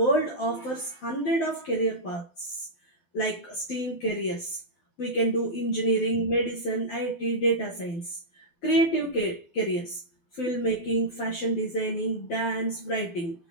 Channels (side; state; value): right; late; 12 ms